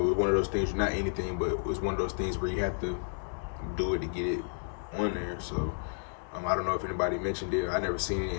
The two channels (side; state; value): right; silent; digital silence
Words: it's one of those things, not anything, but it's one of those things where you have to do it to get it on there. So I don't know if anybody mentioned it. I never seen it